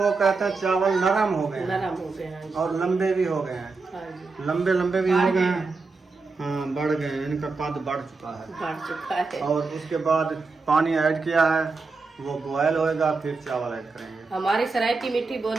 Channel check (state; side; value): quieter; left; 4.1 dB